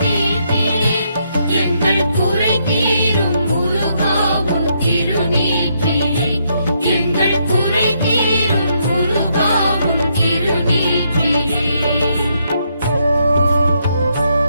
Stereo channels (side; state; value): both; inverted; correlation -0.76